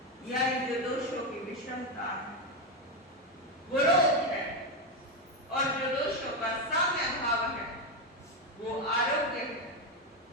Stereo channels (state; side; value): normal; both; correlation 0.08